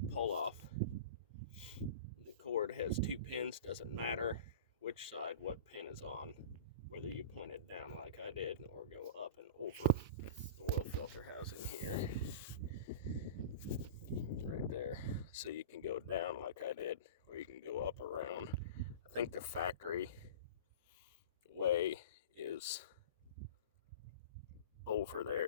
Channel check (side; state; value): both; inverted; correlation -0.35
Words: pull off. The cord has 2 pins, doesn't matter which side what pin is on, whether you point it down like I did or go up and over the oil filter housing here. Right there. So you can go down like I did, or you can go up around. I think the factory way is over